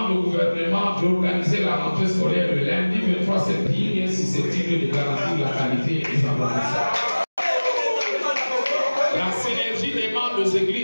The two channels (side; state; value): both; inverted; correlation -1.00